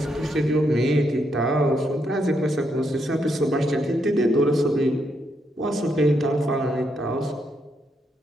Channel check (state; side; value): normal; both; correlation 0.78